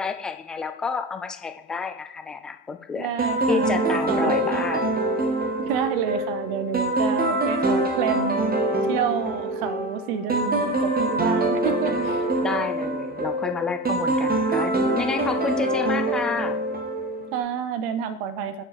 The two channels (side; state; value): both; normal; correlation 0.27